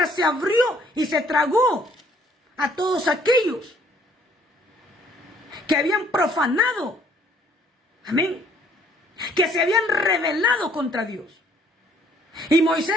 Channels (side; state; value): both; normal; correlation 0.61